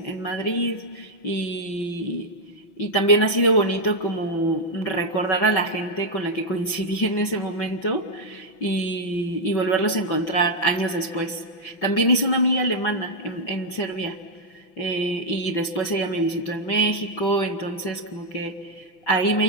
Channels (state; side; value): late; right; 6.0 ms